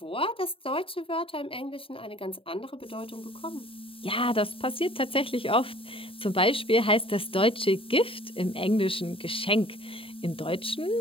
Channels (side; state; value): right; late; 0.26 ms